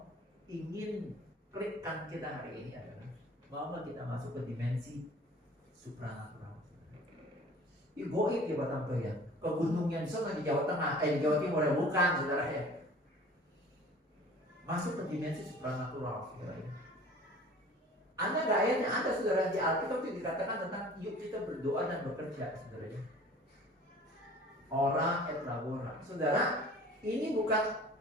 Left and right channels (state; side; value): normal; both; correlation 0.46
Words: ingin klikkan kita hari ini adalah bahwa kita masuk ke dimensi supranatural. Itu goib ya Bapak ya. Ke gunungnya di sana di Jawa Tengah, di Jawa Timur ya bukan saudara ya. Masuk ke dimensi supranatural saudara ya. Ada nggak ayatnya? Ada saudara di Alkitab itu dikatakan tentang yuk kita berdoa dan bekerja saudara ya. Ora et labora. Saudara, ini bukan